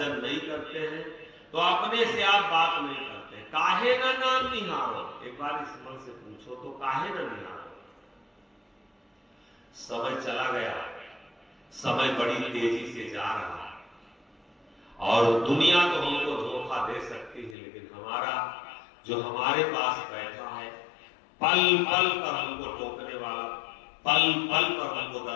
नहीं करते हैं, तो अपने से आप बात नहीं करते, काहे ना नाम निहारो। एक बार इस मन से पूछो तो काहे ना निहारो। समय चला गया, समय बड़ी तेजी से जा रहा है, और दुनिया तो हमको धोखा दे सकती है, लेकिन हमारा जो हमारे पास बैठा है पल पल पर हमको टोकने वाला, पल पल पर हमको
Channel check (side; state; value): right; drops out; at 17.6 s